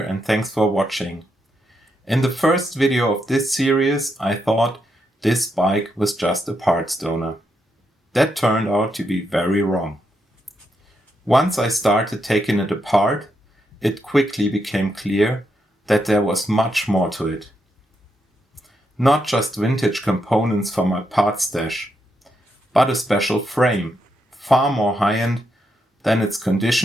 thanks for watching. In the first video of this series I thought this bike was just a parts donor. That turned out to be very wrong. Once I started taking it apart, it quickly became clear that there was much more to it. Not just vintage components for my parts stash, but a special frame, far more high-end than its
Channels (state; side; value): normal; both; correlation 0.81